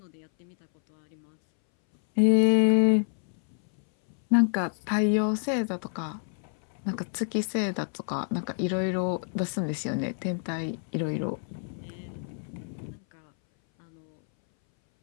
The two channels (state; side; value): silent; right; 59 dB below the other